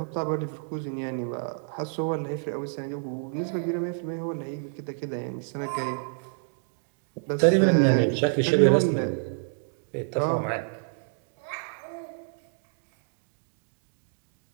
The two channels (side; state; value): left; silent; digital silence